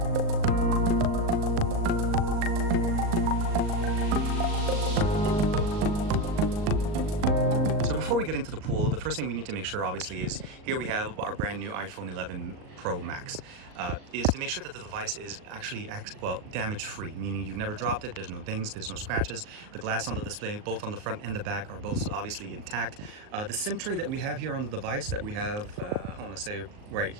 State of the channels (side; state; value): left; late; 38 ms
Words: Before we get into the pool, the first thing we need to make sure obviously is here we have our brand new iPhone 11 Pro Max, is to make sure that the device is actually damage free, meaning you've never dropped it, there's no dings, there's no scratches. The glass on the display, both on the front and the back, are both obviously intact. The SIM tray that we have here on the device that we have, I want to say right